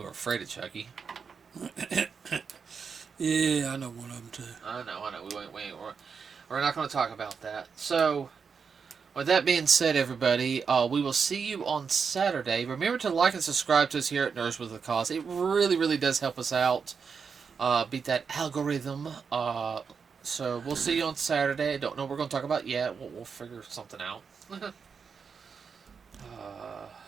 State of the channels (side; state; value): left; quieter; 5.9 dB